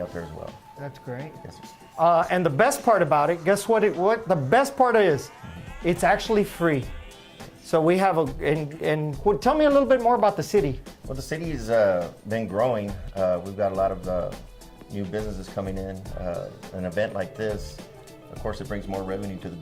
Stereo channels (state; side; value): identical; both; correlation 1.00